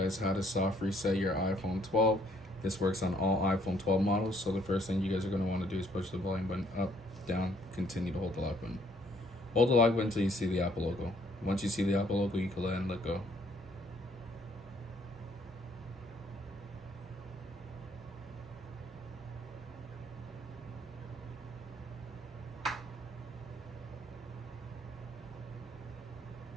how to soft reset your iPhone 12. This works on all iPhone 12 models. So the first thing you guys are going to want to do is push the volume button up, down, continue to hold the lock button. Hold the lock button until you see the Apple logo. Once you see the Apple logo, you can let go.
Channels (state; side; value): normal; both; correlation 0.65